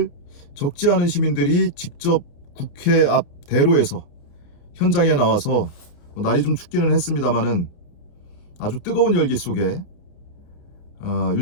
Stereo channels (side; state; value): right; late; 29 ms